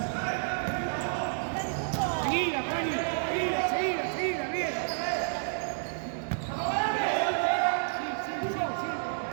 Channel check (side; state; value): left; silent; digital silence